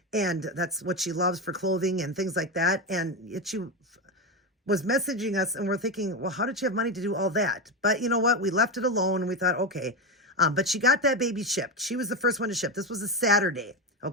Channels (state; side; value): normal; both; correlation 0.14